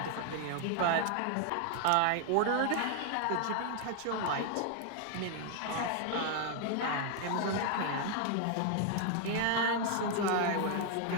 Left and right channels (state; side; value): different; both; correlation 0.00